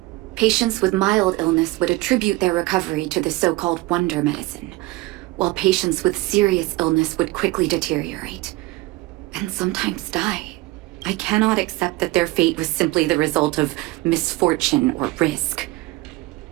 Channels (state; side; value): quieter; left; 20.1 dB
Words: Patients with mild illness would attribute their recovery to the so-called wonder medicine, while patients with serious illness would quickly deteriorate, and sometimes die. I cannot accept that their fate was simply the result of misfortune or risk.